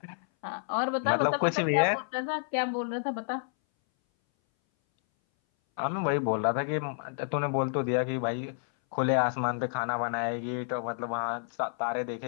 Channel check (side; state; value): right; silent; 58 dB below the other